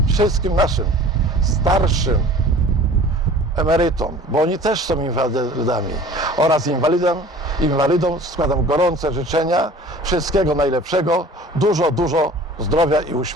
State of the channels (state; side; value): normal; both; correlation 0.45